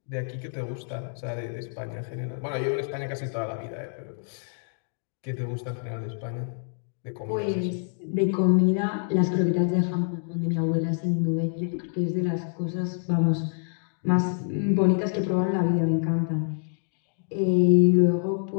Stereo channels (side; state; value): right; silent; digital silence